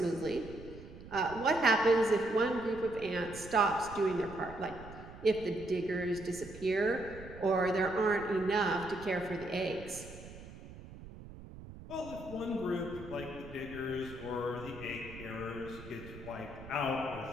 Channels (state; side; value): noise; right; rumble, 15 dB below the sound